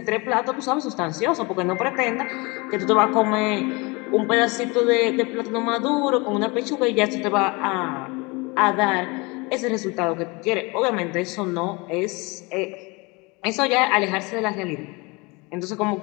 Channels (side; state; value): right; quieter; 26.6 dB